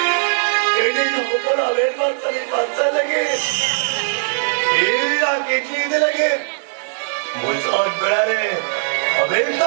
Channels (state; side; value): silent; left; digital silence